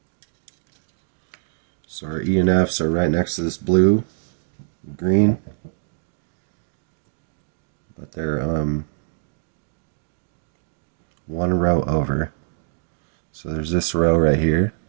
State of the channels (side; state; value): left; silent; digital silence